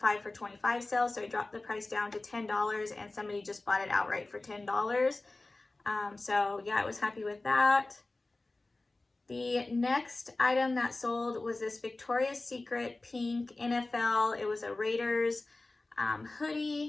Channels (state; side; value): quieter; right; 3.1 dB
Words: for $25 sale, so I dropped the price down to $10, and somebody just bought it outright for $10. So yeah, I was happy with that. The next item that sold was this Victoria's Secret pink NFL. It was a Raiders